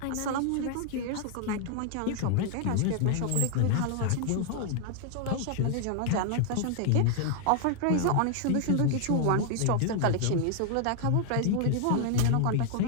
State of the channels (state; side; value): different; both; correlation 0.00